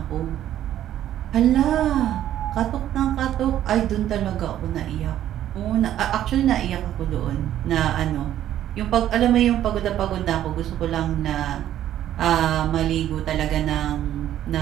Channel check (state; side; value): quieter; left; 11.8 dB